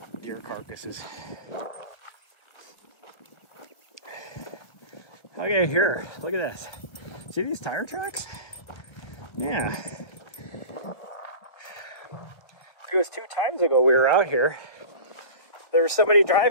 deer carcasses. Okay, here, look at this. See these tire tracks? Yeah. It was 2 times ago we were out here. There was somebody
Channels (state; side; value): late; right; 1.5 ms